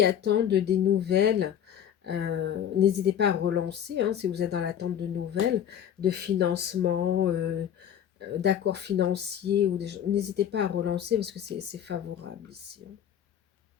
attendent des nouvelles, n'hésitez pas à relancer, hein, si vous êtes dans l'attente de nouvelles, de financement, d'accords financiers, n'hésitez pas à relancer parce que c'est favorable ici, hein.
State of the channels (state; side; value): quieter; right; 9.6 dB